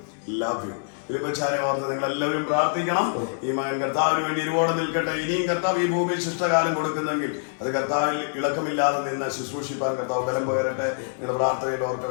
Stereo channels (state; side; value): silent; right; 59 dB below the other